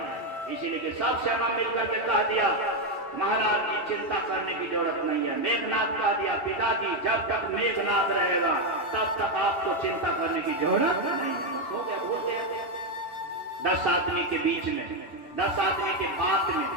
इसीलिए कि सब सेना मिलकर के कह दिया, महाराज की चिंता करने की जरूरत नहीं है। मेघनाथ कह दिया, पिताजी जब तक मेघनाथ रहेगा तब तक आपको चिंता करने की जरूरत नहीं है। 10 आदमी के बीच में, 10 आदमी के बात में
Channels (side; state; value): right; late; 3.1 ms